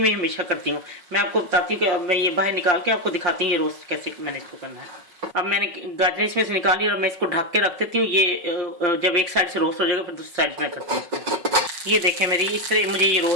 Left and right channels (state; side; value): late; left; 5.7 ms